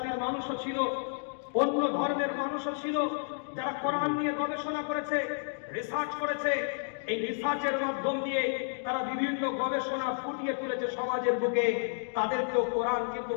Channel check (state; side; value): silent; right; digital silence